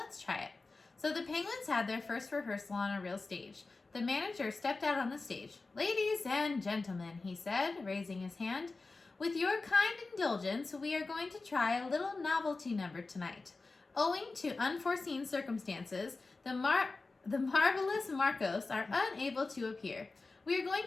try it." So the penguins had their first rehearsal on a real stage. The manager stepped out on the stage. "Ladies and gentlemen," he said, raising his hand, "with your kind indulgence, we are going to try a little novelty number tonight. Owing to unforeseen circumstances, the marvelous Marcos are unable to appear. We are going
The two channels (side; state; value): right; quieter; 3.7 dB